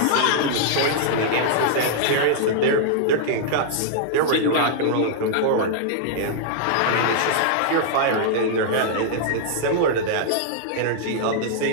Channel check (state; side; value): different; both; correlation -0.01